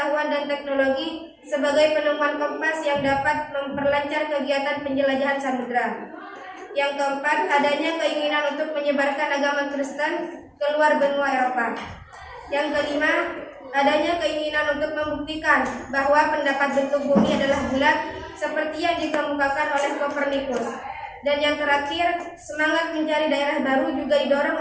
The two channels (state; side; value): identical; both; correlation 1.00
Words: dan teknologi sebagai penemuan kompas yang dapat memperlancar kegiatan penjelajahan samudera. Yang keempat, adanya keinginan untuk menyebarkan agama Kristen keluar benua Eropa. Yang kelima, adanya keinginan untuk membuktikan bahwa pendapat bentuk bumi adalah bulat seperti yang dikemukakan oleh Kopernikus. Dan yang terakhir, semangat mencari daerah baru juga didorong